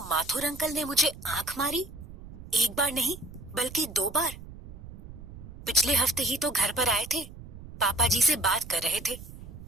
माथुर अंकल ने मुझे आंख मारी, एक बार नहीं बल्कि 2 बार। पिछले हफ्ते ही तो घर पर आए थे, पापा जी से बात कर रहे थे,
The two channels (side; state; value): right; noise; rumble, 15 dB below the sound